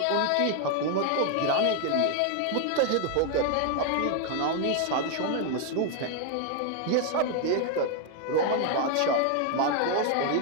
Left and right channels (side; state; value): both; different; correlation 0.01